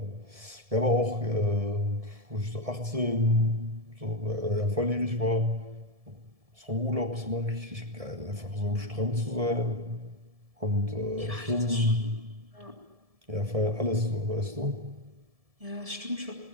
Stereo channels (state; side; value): late; left; 1.7 ms